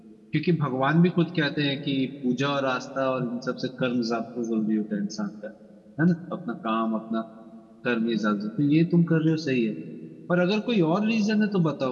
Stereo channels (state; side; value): identical; both; correlation 1.00